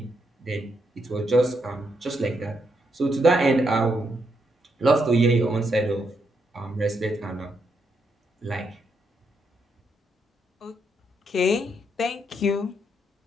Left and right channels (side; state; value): both; normal; correlation 0.79